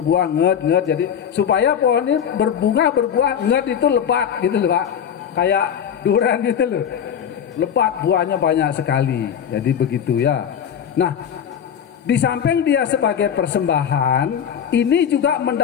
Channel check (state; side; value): quieter; right; 8.4 dB